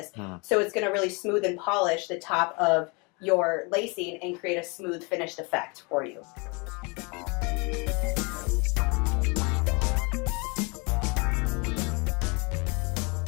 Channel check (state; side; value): quieter; right; 30.2 dB